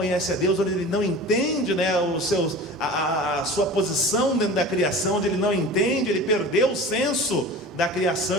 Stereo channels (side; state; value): both; normal; correlation 0.37